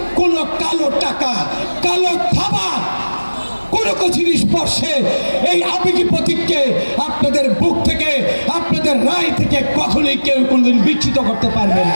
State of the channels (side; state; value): both; inverted; correlation -1.00